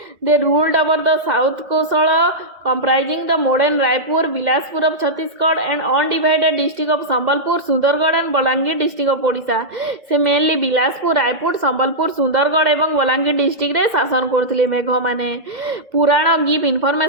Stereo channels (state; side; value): late; left; 2.1 ms